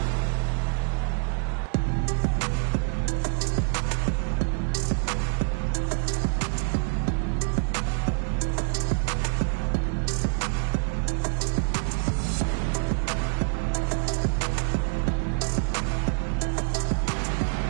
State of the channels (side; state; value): left; silent; digital silence